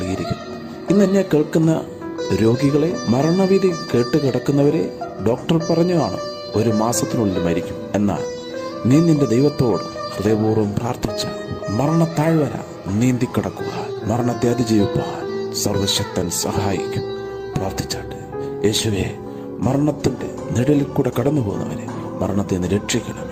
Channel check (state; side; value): identical; both; correlation 1.00